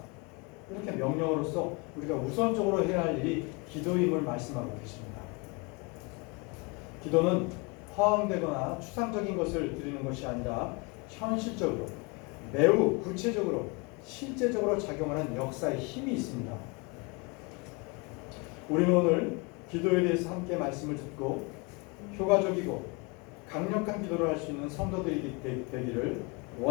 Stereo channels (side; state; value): right; quieter; 28.9 dB